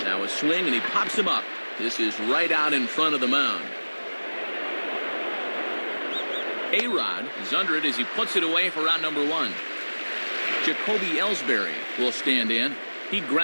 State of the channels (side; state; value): both; inverted; correlation -1.00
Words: Now a swing, and he pops him up. This is right out in front of the mound. A-Rod is under it as he puts it away for out number 1. Jacoby Ellsbury will stand in. He